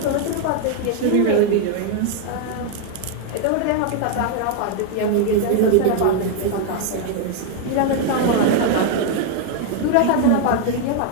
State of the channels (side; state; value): both; different; correlation 0.00